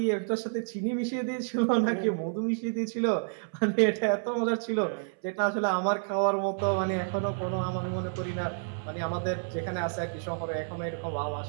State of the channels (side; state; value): left; silent; 58 dB below the other